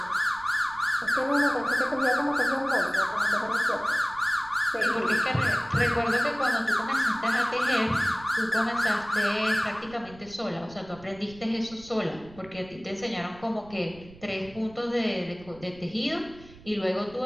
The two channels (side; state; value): right; noise; rumble, 21 dB below the sound